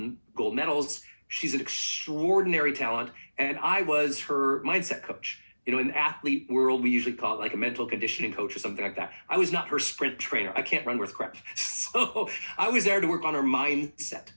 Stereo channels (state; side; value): inverted; both; correlation -1.00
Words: medals. She's an extraordinary talent, and I was her mindset coach. In the athlete world, we usually call it like a mental conditioning coach or something like that. I was not her sprint trainer. I can't run worth crap. So I was there to work on her mindset.